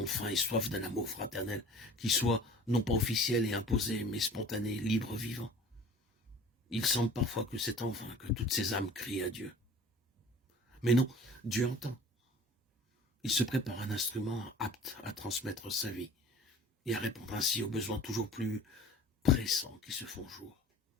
faim et soif d'un amour fraternel, qui soit non pas officiel et imposé, mais spontané, libre, vivant. Il semble parfois que c'est en vain que toutes ces âmes crient à Dieu. Mais non, Dieu entend. Il se prépare un instrument apte à transmettre sa vie et à répondre ainsi aux besoins toujours plus pressants qui se font jour.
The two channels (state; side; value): normal; both; correlation 0.44